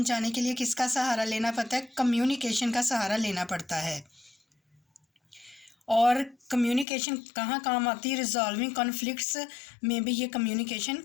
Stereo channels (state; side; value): drops out; right; at 6.9 s